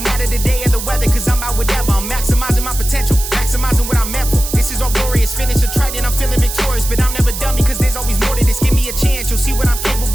the day or the weather, cause I'm out whatever. I'm maximizing my potential, maximizing what I'm meant for. This is all glorious, finish a trident, I'm feeling victorious. But I'm never done because there's always more to this. Give me a chance, you'll see what I'm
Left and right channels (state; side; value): noise; right; hiss, 7 dB below the sound